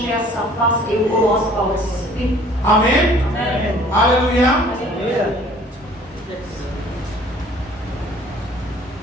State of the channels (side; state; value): both; normal; correlation 0.53